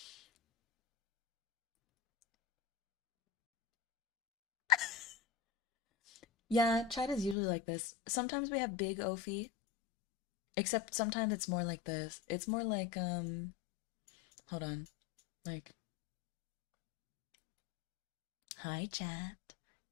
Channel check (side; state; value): right; drops out; at 7.4 s